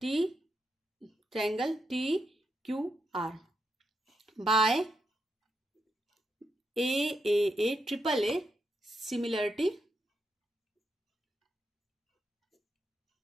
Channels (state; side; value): normal; both; correlation 0.83